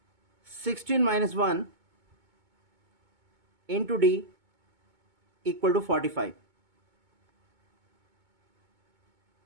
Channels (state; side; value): late; left; 2.2 ms